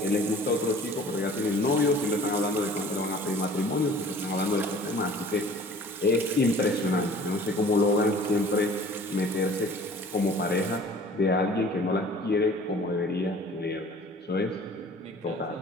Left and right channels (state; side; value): normal; both; correlation 0.48